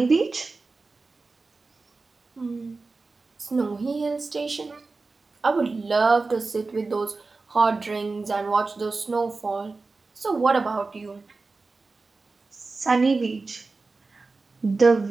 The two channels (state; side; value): quieter; left; 3.8 dB